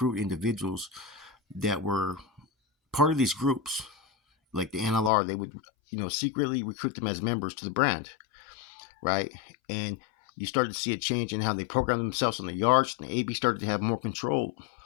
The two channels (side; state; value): right; drops out; at 5.1 s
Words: individuals that were part of these groups. Like the NLR, they would, secretly recruit them as members to the brand, right? And you started to see a change in how they programmed themselves on the yards, and the AB started to have more control